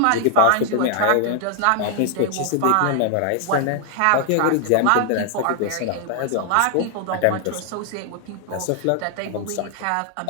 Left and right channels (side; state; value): both; different; correlation 0.00